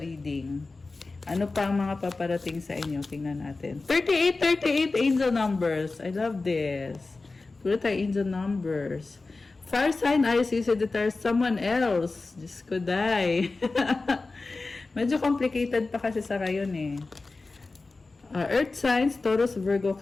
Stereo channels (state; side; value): quieter; right; 3.6 dB